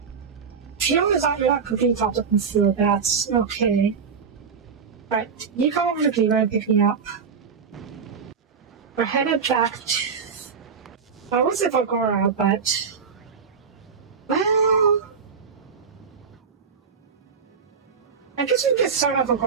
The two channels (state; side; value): quieter; left; 6.0 dB